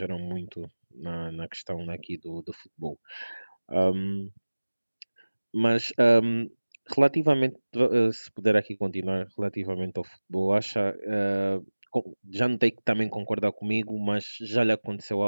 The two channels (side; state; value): both; inverted; correlation -1.00